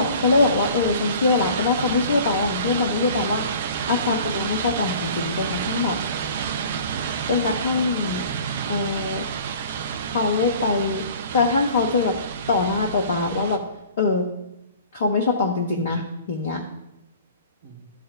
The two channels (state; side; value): inverted; both; correlation -0.46